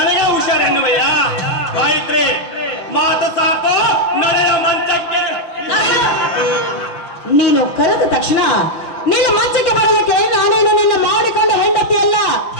ಹುಷಾರ್ ಎನ್ನುವಯ್ಯ. ಗಾಯತ್ರಿ, ಮಾತು ಸಾಕು, ನಡೆಯ ಮಂಚಕ್ಕೆ. ನೀನು ಕರೆದ ತಕ್ಷಣ ನಿನ್ನ ಮಂಚಕ್ಕೆ ಬರೋದಕ್ಕೆ ನಾನೇನು ನಿನ್ನ ಮಾಡಿಕೊಂಡ ಹೆಂಡತಿ ಅಲ್ಲ.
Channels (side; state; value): right; late; 5.8 ms